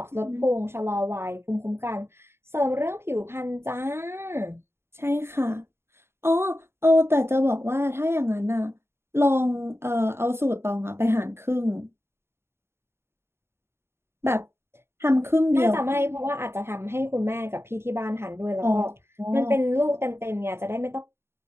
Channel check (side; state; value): left; late; 0.12 ms